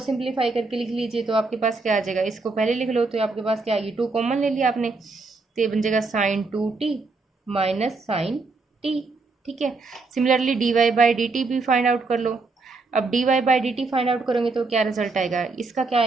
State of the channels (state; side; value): quieter; left; 3.8 dB